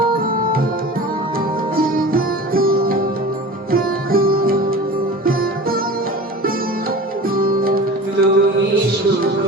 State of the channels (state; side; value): normal; both; correlation 0.37